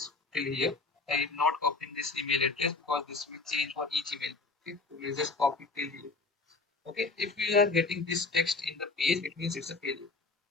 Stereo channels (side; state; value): right; quieter; 3.7 dB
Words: till here. I am not copying this email address because this will change for each email. Okay, so let's just copy till here. Okay, if we are getting this text in the page, it means it's a failure.